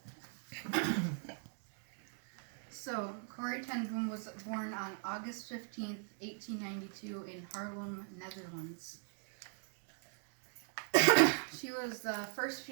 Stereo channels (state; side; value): silent; left; 51 dB below the other